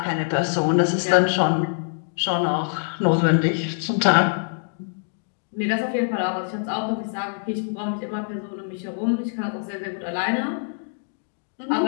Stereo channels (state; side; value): silent; right; digital silence